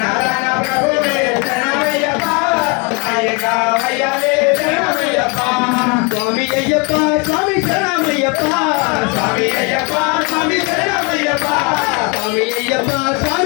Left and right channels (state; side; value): quieter; right; 31.1 dB